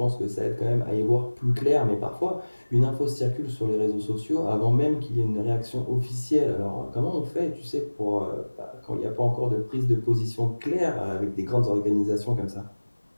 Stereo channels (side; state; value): both; inverted; correlation -1.00